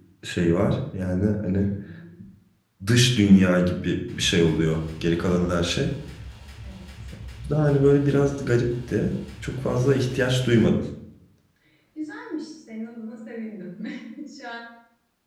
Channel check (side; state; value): both; identical; correlation 1.00